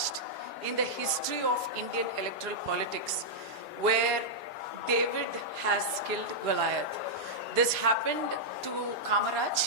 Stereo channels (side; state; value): both; normal; correlation -0.08